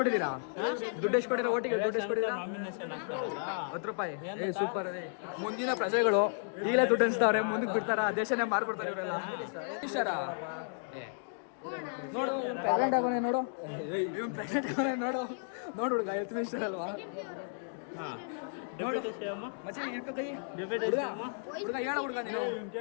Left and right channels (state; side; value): silent; right; digital silence